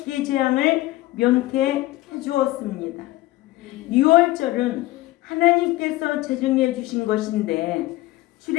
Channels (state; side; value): quieter; right; 18.1 dB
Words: 재앙을 면케해 주었습니다. 유월절은 하나님께서 제정해 주신 것인데